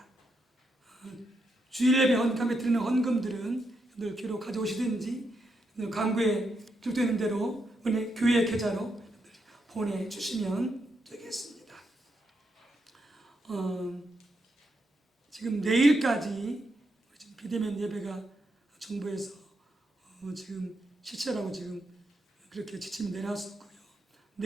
주일 예배 헌금에 드리는 헌금들은 늘 교회로 가져오시든지 광고에 기록되어 있는 대로 은혜 교회 계좌로 보내주시면 되겠습니다. 지금 내일까지 지금 비대면 예배가 정부에서 지금 실시하라고 지금 그렇게 지침이 내놨었고요.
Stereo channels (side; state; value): both; normal; correlation 0.82